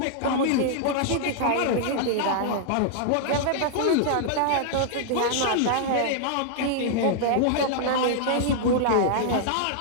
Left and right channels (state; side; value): different; both; correlation -0.01